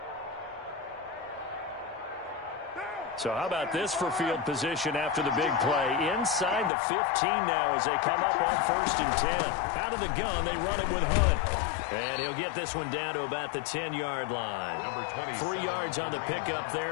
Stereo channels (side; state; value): right; drops out; at 6.7 s